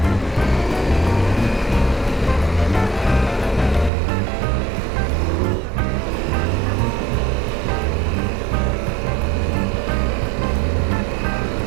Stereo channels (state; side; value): drops out; left; at 3.9 s